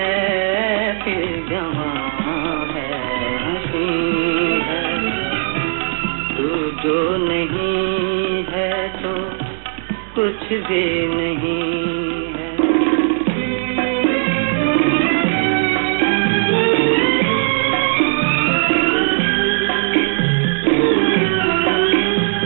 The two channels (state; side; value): silent; left; digital silence